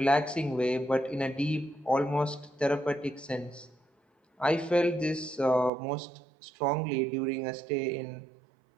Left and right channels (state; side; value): drops out; left; at 5.7 s